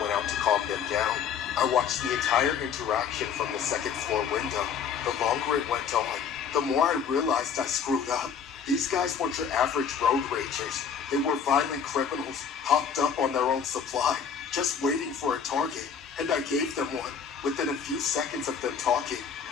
out to calm them down. I watched the entire interaction from the second floor window. The longer it went on, the more I realized I screwed up. These guys weren't your average road ragers. They were violent criminals, hopped up on their own supply, just waiting for a target, and I gave them one. Within a few seconds of them talking,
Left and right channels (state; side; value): quieter; right; 7.1 dB